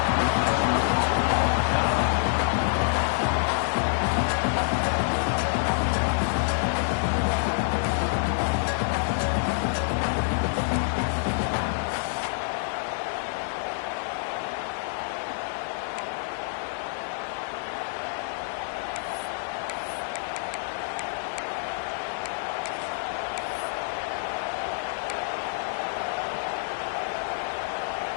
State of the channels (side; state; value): right; silent; digital silence